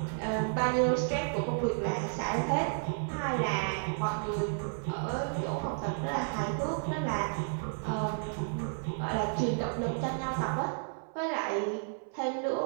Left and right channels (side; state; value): left; silent; 56 dB below the other